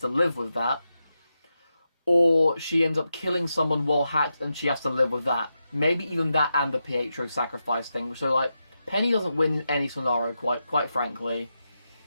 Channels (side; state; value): both; inverted; correlation -0.88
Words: live with that. Or she ends up killing someone while hacked, and she has to live with that. Maybe even that and the Pietro sacrifice thing. So Penny doesn't win in any scenario, quite frankly.